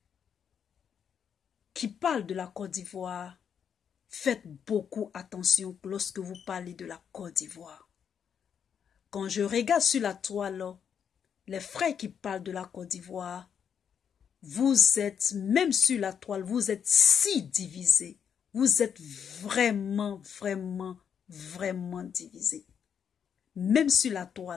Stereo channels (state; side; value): quieter; right; 7.7 dB